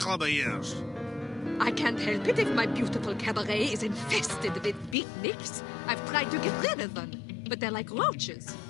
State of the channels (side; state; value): right; drops out; at 5.0 s